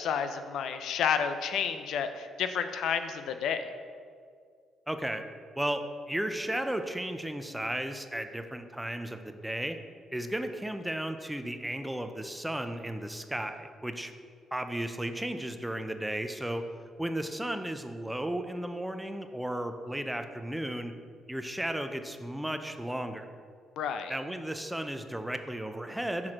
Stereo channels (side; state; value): both; normal; correlation 0.82